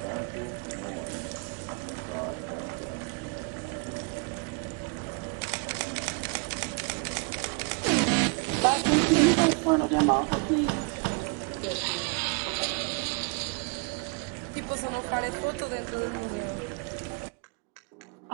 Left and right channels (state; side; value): quieter; left; 33.0 dB